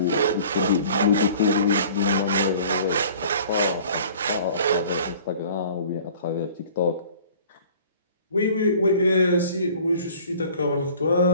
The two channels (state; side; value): inverted; both; correlation -0.49